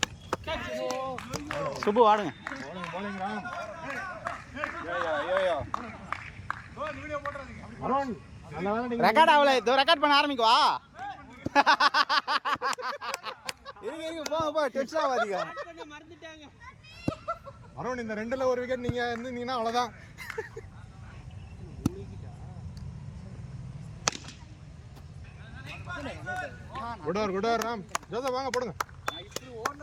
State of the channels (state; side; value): identical; both; correlation 1.00